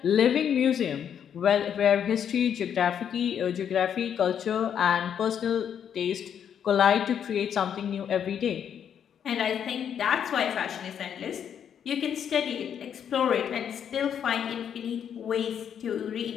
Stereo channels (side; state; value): right; quieter; 8.6 dB